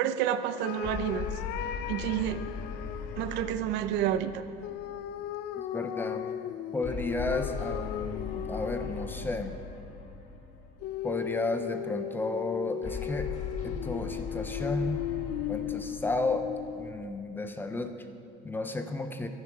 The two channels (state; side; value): normal; both; correlation 0.42